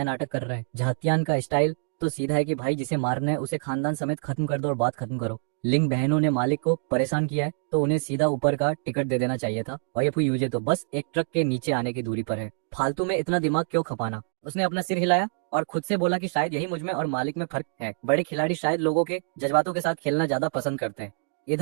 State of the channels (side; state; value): left; silent; digital silence